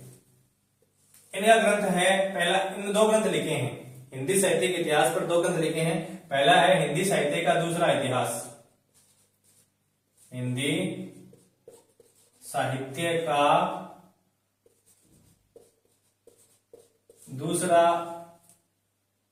इनका ग्रंथ है पहला, इन दो ग्रंथ लिखे हैं हिंदी साहित्य के इतिहास पर, दो ग्रंथ लिखे हैं। पहला है हिंदी साहित्य का दूसरा इतिहास, हिंदी साहित्य का दूसरा,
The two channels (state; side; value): identical; both; correlation 1.00